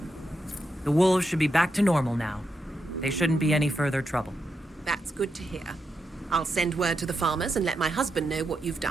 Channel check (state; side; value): normal; both; correlation 0.85